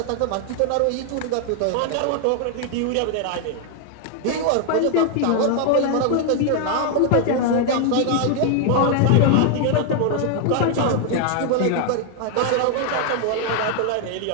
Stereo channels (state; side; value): different; both; correlation 0.00